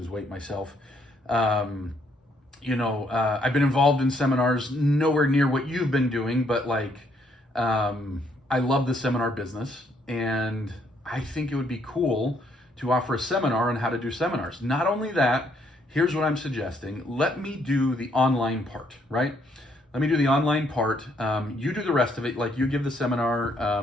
weight myself. I've been involved in seminars, nowhere near what you've been doing, but I love the seminar business, and I think it would be cool to offer a seminar on how to do seminars. Not only that, here's what I'm suggesting. Let me do the online part, right? Let me do the online part. You do the rest of it. Like, you give the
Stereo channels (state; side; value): normal; both; correlation 0.70